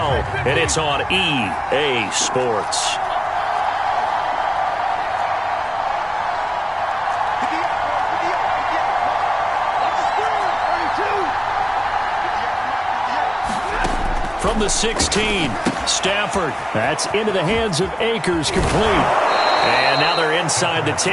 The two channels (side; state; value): both; identical; correlation 1.00